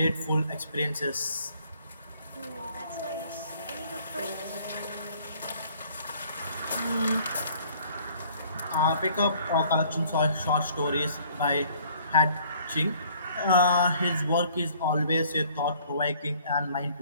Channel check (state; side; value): inverted; both; correlation -0.58